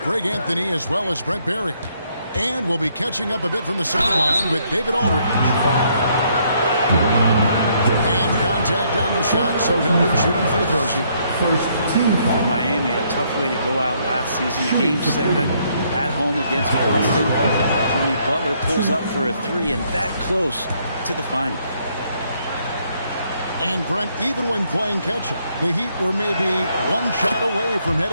Greg Anthony as well as Brent Barry. And we'll be catching up a bit from the sideline with David Aldridge. And contact on the shot, so he'll be shooting free throws here. First team for Miami, a tough way to go out last season. Game 7 at home against Boston. Jimmy Butler pulls up for a 3 and that close to the final. And Brent, even when playing catch-up, the Heat were maybe one shot away from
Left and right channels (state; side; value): inverted; both; correlation -0.70